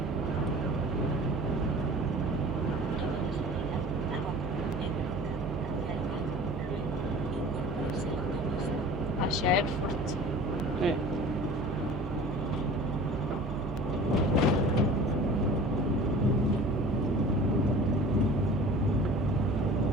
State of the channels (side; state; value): both; normal; correlation 0.42